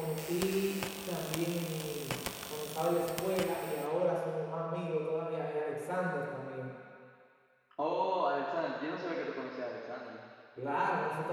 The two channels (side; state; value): both; identical; correlation 1.00